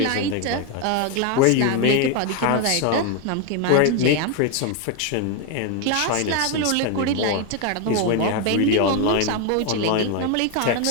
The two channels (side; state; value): both; different; correlation 0.01